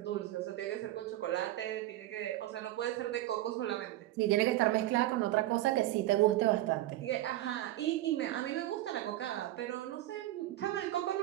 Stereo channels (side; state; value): left; quieter; 15.4 dB